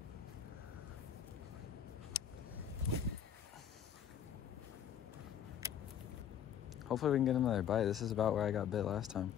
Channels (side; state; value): right; quieter; 8.9 dB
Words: Hopefully we can get another bite. This is about where I got bit last time.